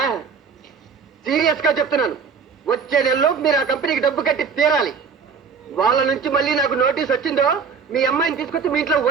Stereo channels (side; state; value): left; quieter; 5.7 dB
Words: సీరియస్ గా చెప్తున్నాను, వచ్చే నెలలో మీరు ఆ కంపెనీకి డబ్బు కట్టి తీరాలి. వాళ్ళ నుంచి మళ్ళీ నాకు నోటీస్ వచ్చిందో మీ అమ్మాయిని తీసుకొచ్చి మీ ఇంట్లో